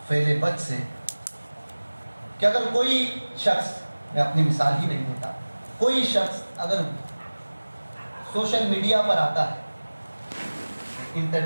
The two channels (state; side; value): inverted; both; correlation -1.00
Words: فعل بد سے، کہ اگر کوئی شخص، میں اپنی مثال ہی نہیں دیتا، کوئی شخص اگر سوشل میڈیا پر آتا ہے،